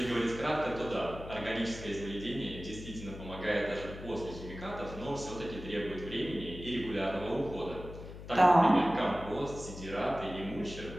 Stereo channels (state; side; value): noise; left; hum, 12 dB below the sound